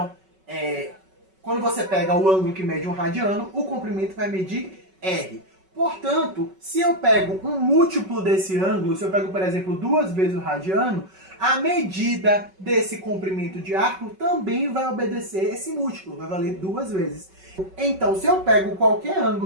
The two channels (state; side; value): late; left; 5.3 ms